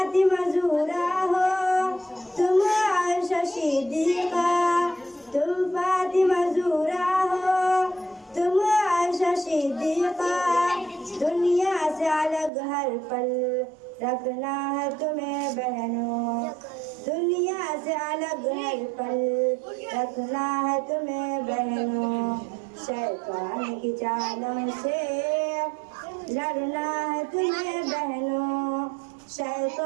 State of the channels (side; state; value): left; drops out; at 12.5 s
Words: ज़हरा हो, तुम आयशा सिद्दीक़ा, तुम फातिमा ज़हरा हो, तुम आयशा सिद्दीक़ा। दुनिया से अलग हर पल रखना है तुम्हें बहनों, दुनिया से अलग हर पल रखना है तुम्हें बहनों। शैतान की चालों से लड़ना है तुम्हें बहनों,